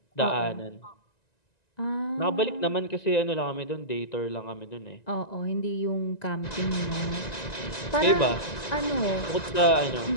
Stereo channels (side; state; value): right; late; 1.9 ms